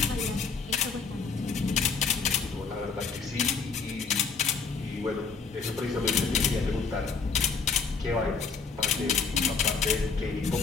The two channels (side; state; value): right; quieter; 5.1 dB